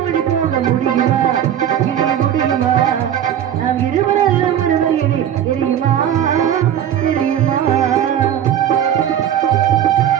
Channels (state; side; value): quieter; left; 10.1 dB